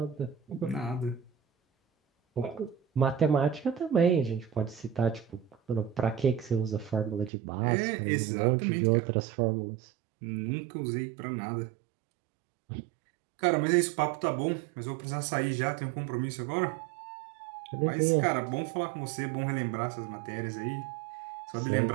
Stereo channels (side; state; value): left; drops out; at 7.3 s